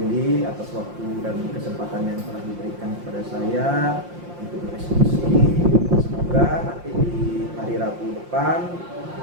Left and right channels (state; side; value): late; left; 5.7 ms